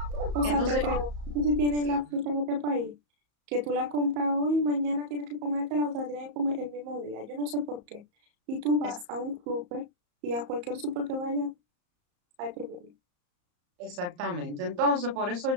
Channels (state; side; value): late; left; 34 ms